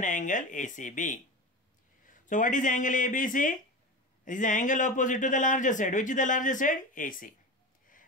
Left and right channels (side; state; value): both; normal; correlation 0.27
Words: angle ACB. So what is angle ABC? It is the angle opposite to the larger side. Which is the larger side? AC.